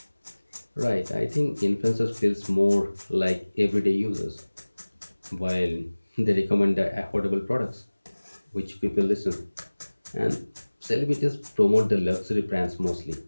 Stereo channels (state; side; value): inverted; both; correlation -1.00